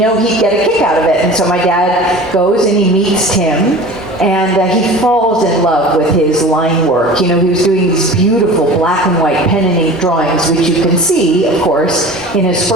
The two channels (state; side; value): noise; left; hum, 28 dB below the sound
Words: he'd get a kick out of it. And so my dad goes and he meets Tim, and he falls in love with his line work. You know, he was doing these beautiful black and white pen and ink drawings, which you can see, of course, in his